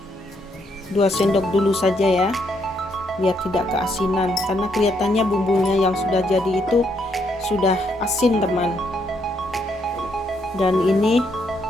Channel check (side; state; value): both; normal; correlation 0.74